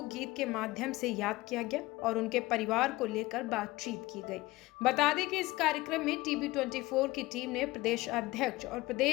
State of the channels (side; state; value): right; quieter; 19.9 dB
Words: गीत के माध्यम से याद किया गया और उनके परिवार को लेकर बातचीत की गई। बता दें कि इस कार्यक्रम में TB24 की टीम ने प्रदेश अध्यक्ष और